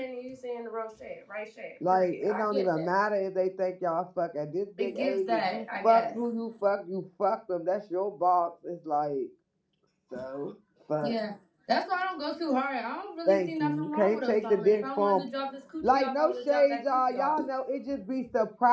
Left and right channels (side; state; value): both; identical; correlation 1.00